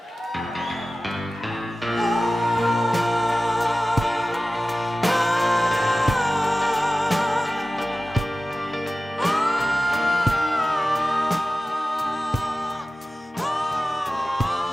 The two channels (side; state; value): both; normal; correlation 0.95